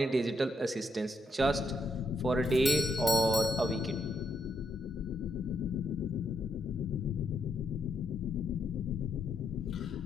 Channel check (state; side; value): normal; both; correlation 0.78